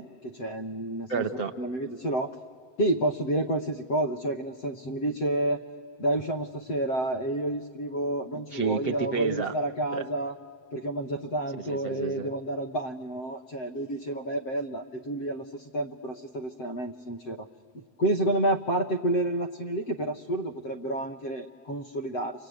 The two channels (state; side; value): late; right; 7.8 ms